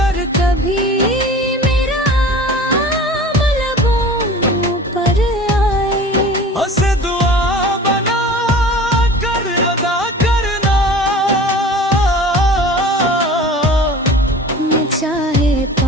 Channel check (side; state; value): both; normal; correlation 0.41